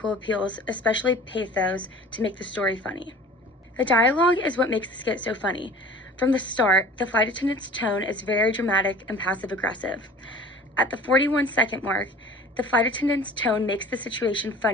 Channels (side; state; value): both; normal; correlation 0.43